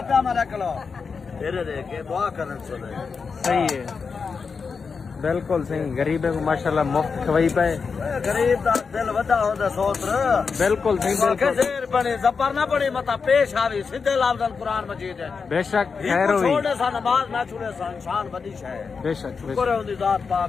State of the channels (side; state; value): right; quieter; 5.3 dB